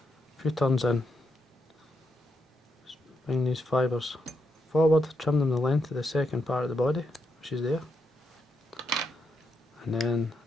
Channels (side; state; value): both; normal; correlation 0.81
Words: a few turns in. Bring these fibres forward, trim them the length of the second part of the body, which is there, and then